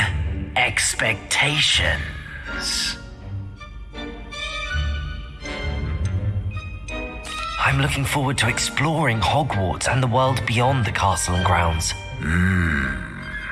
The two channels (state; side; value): identical; both; correlation 1.00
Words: expectations. I'm looking forward to exploring Hogwarts and the world beyond the castle and grounds.